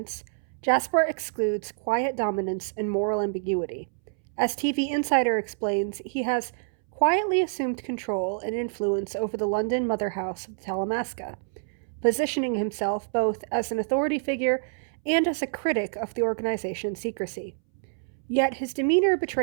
Jasper excludes quiet dominance and moral ambiguity. As TV Insider explains, he has quietly assumed control and influence over the London mother house of the Talamasca, positioning himself both as an authority figure and as a critic of the organization's secrecy. Yet his demeanor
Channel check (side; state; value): left; silent; 60 dB below the other